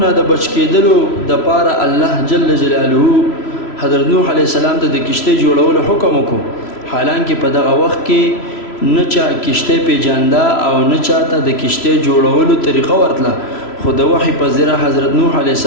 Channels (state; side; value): late; right; 3.0 ms